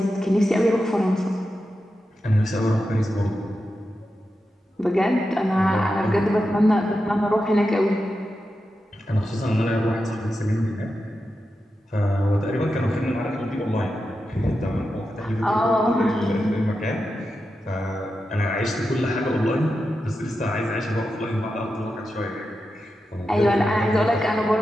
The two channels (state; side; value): normal; both; correlation 0.89